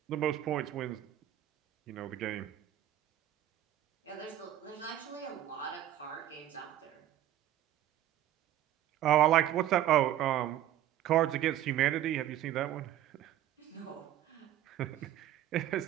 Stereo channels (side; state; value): left; quieter; 12.6 dB